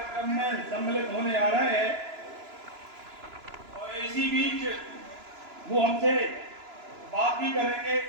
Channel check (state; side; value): late; left; 2.9 ms